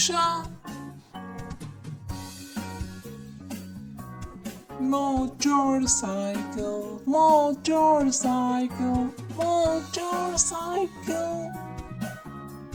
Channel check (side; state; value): both; identical; correlation 1.00